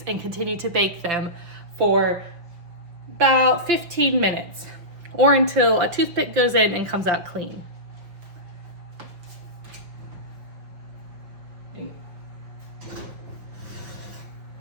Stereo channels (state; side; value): late; left; 5.7 ms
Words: and continue to bake them for about 15 minutes, or until a toothpick goes in and comes out clean.